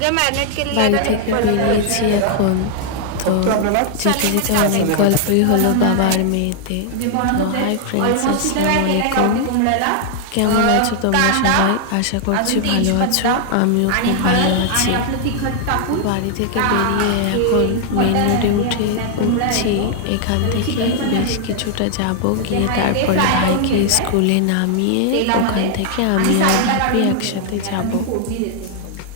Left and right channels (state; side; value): different; both; correlation 0.00